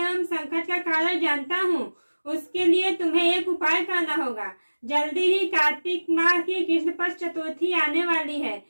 एवं संकट का कारण जानता हूँ। उसके लिए तुम्हें एक उपाय करना होगा। जल्दी ही कार्तिक माह की कृष्ण पक्ष चतुर्थी आने वाली है।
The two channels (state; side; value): inverted; both; correlation -1.00